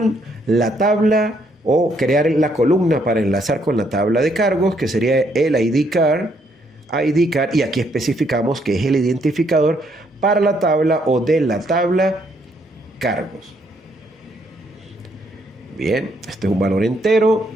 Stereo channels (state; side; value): normal; both; correlation 0.71